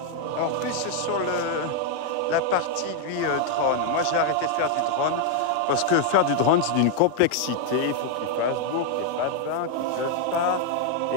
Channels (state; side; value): different; both; correlation 0.00